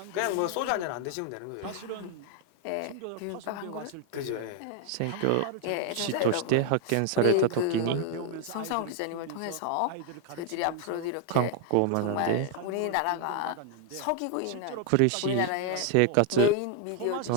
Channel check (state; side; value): different; both; correlation 0.00